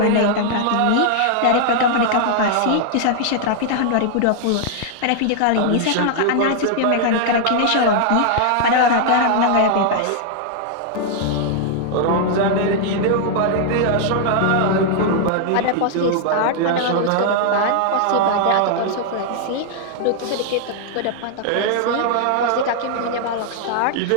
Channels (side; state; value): both; different; correlation 0.00